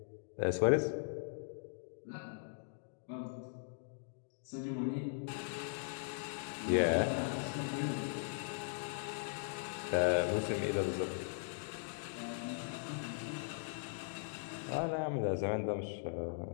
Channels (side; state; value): right; silent; digital silence